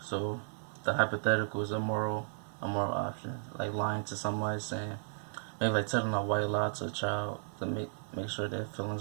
the hypothetical is a moral option, like lying to somebody, saying maybe like telling a white lie to a child to make sure their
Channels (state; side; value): silent; left; 55 dB below the other